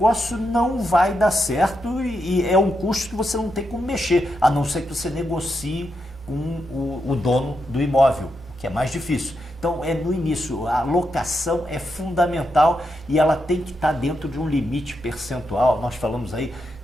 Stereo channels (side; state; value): both; normal; correlation 0.84